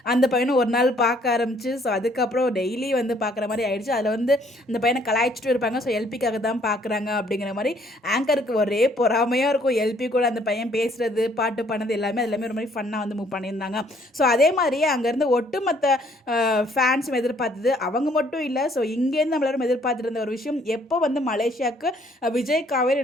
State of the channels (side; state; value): both; normal; correlation 0.63